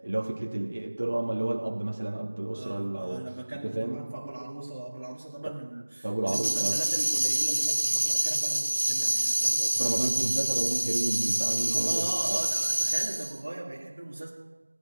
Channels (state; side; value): inverted; both; correlation -1.00